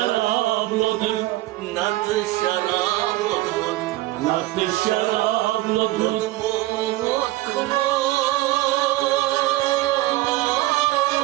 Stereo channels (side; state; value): left; quieter; 17.7 dB